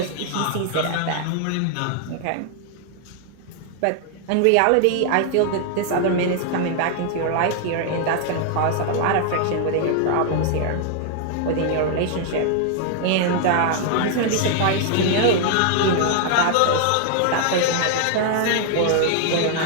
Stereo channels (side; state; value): both; different; correlation 0.00